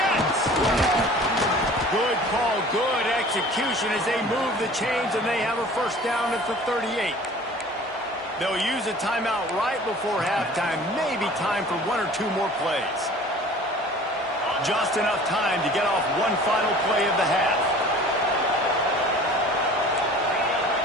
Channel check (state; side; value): normal; both; correlation 0.46